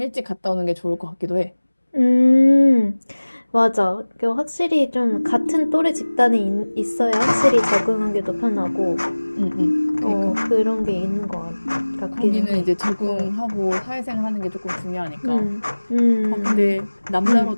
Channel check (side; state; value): both; inverted; correlation -1.00